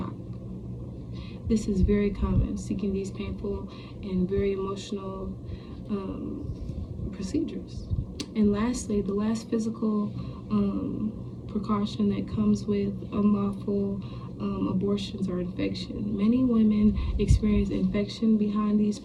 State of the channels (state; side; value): identical; both; correlation 1.00